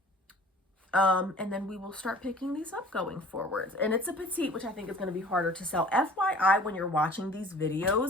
And then we will start picking these up going forward. And it's a petite, which I think is going to be harder to sell. FYI, when you're watching these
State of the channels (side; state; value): both; normal; correlation 0.49